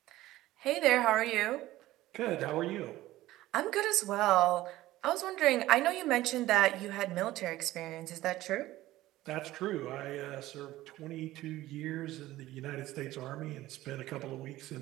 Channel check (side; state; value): left; quieter; 16.1 dB